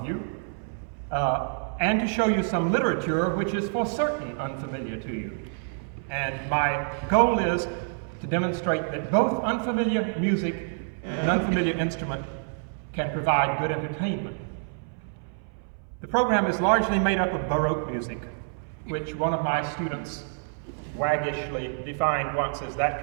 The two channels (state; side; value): silent; left; 60 dB below the other